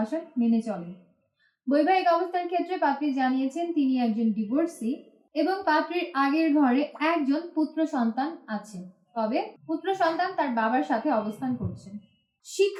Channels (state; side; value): identical; both; correlation 1.00